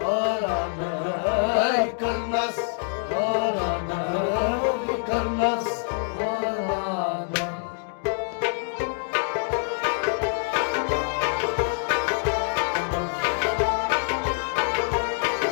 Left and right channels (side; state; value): right; silent; 61 dB below the other